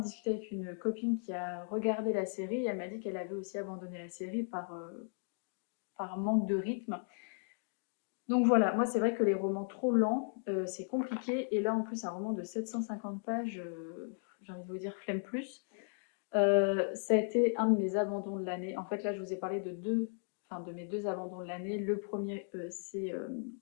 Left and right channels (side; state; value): right; silent; digital silence